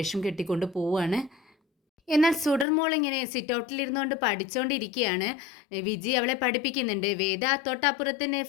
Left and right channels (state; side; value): drops out; right; at 2.7 s